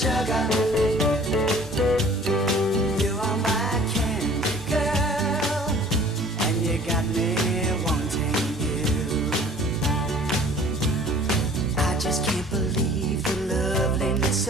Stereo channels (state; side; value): normal; both; correlation 0.50